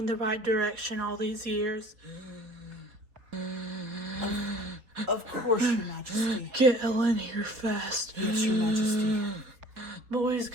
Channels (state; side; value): late; left; 4.4 ms